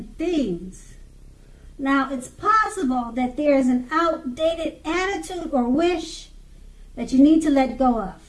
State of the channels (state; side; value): identical; both; correlation 1.00